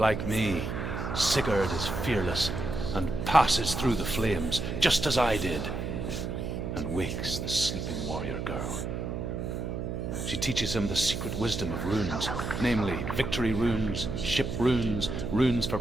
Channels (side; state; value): right; noise; hum, 4 dB below the sound